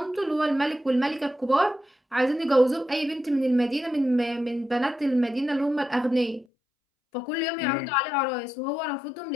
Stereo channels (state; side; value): drops out; right; at 6.5 s